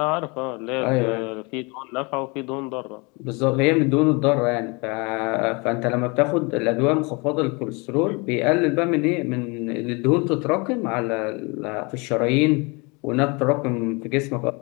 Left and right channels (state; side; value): quieter; right; 29.0 dB